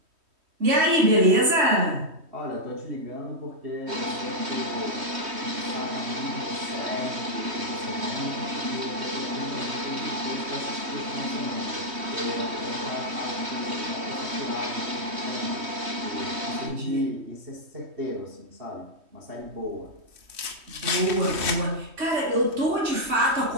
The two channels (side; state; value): left; late; 3.1 ms